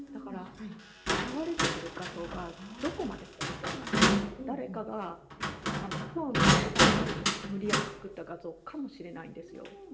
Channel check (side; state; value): both; identical; correlation 1.00